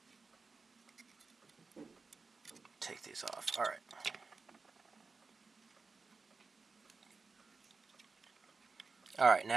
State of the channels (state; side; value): quieter; left; 4.3 dB